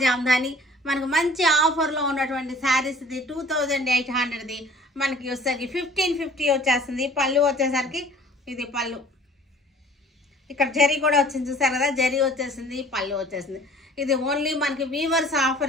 జామ్దాని మనకు మంచి ఆఫర్లో ఉన్నటువంటి శారీస్. ఇది 2800ది మనకి వచ్చేసరికి 1550 వచ్చేస్తుంది. పళ్ళు వచ్చేసరికి ఇది పళ్ళు, ఇక్కడ జరీ కూడా వచ్చింది చూసారు కదా, జరీ వచ్చేసింది, పళ్ళు వచ్చేసింది. ఇది ఓన్లీ మనకి వీవర్స్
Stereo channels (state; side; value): normal; both; correlation 0.51